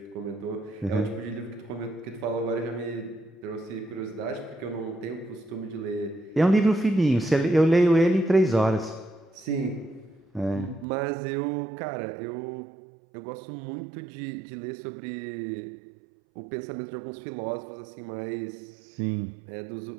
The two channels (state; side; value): drops out; left; at 10.9 s